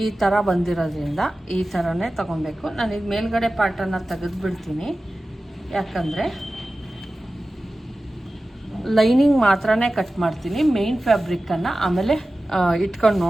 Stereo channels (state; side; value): normal; both; correlation 0.95